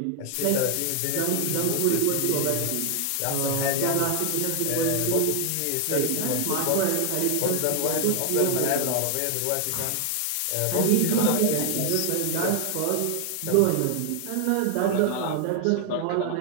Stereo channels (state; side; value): different; both; correlation 0.00